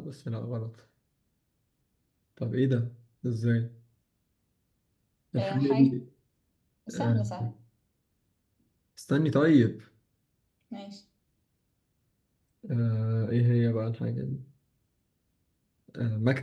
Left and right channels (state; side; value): identical; both; correlation 1.00